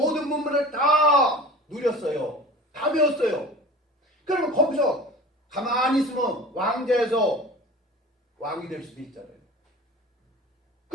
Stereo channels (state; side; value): normal; both; correlation 0.40